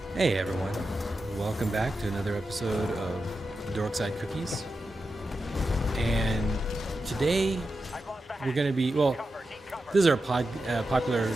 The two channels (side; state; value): both; normal; correlation 0.90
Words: Hey everyone, welcome back to another episode of Dorkside Cookies. And today we're going to be, this is our popular